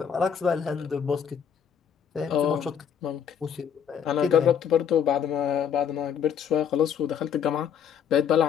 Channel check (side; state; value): right; quieter; 7.9 dB